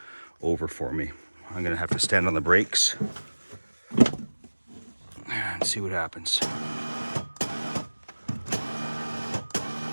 over for me. I'm gonna have to stand on the brakes and see what happens.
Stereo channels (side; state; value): both; inverted; correlation -1.00